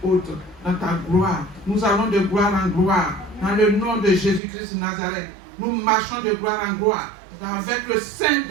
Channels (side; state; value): left; drops out; at 4.4 s